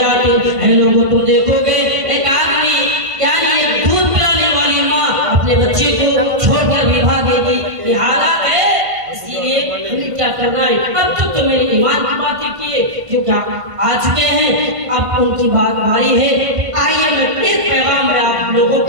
اے لوگوں تم دیکھو گے ایک آدمی یعنی ایک دودھ پلانے والی ماں اپنے بچے کو چھوڑ کر بھی بھاگے گی، یہ حالات ہے۔ اسی لیے ہمیں کیا کرنا ہے؟ اب تک تو میرے ایمان کی باتیں کیے جو کیا آ چکے ہیں، اب ان کی بات باری ہے۔ آئیے میں ایک پیغام میں آپ لوگوں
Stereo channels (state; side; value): late; left; 1.5 ms